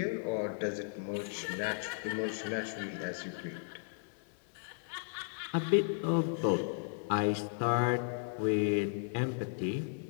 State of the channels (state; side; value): silent; right; digital silence